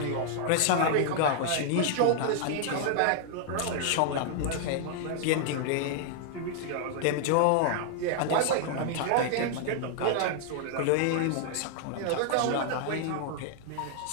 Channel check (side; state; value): both; different; correlation 0.00